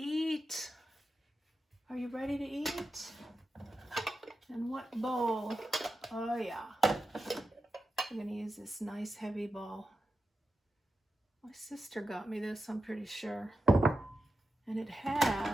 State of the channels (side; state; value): both; normal; correlation 0.90